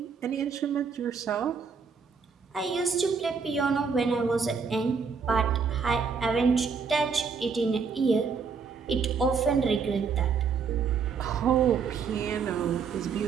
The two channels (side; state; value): left; quieter; 5.6 dB